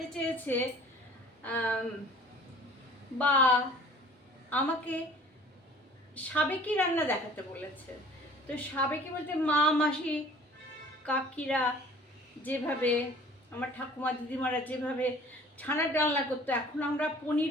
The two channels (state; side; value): normal; both; correlation 0.49